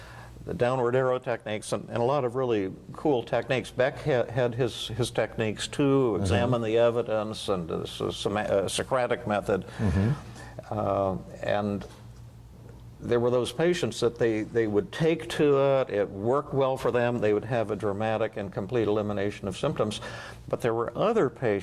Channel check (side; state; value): both; identical; correlation 1.00